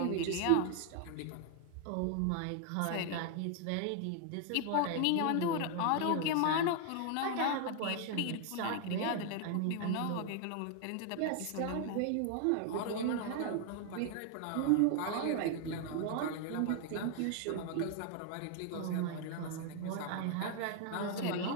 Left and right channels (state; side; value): different; both; correlation 0.00